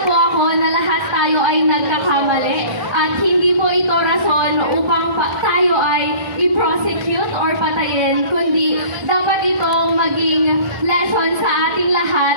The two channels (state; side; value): late; left; 1.3 ms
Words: po ako na lahat tayo ay nagkakamali at hindi po ito rason upang tayo ay i-prosecute or patayin, kundi dapat itong maging lesson sa ating